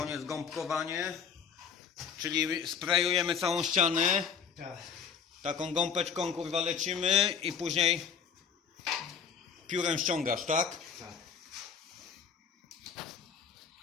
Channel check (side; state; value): right; quieter; 6.9 dB